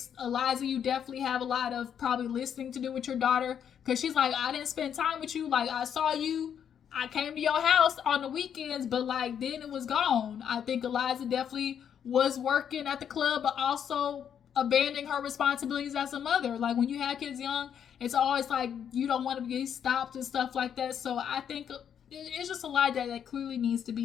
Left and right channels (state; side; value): quieter; right; 8.5 dB